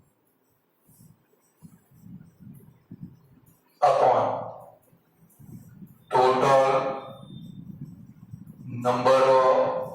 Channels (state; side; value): identical; both; correlation 1.00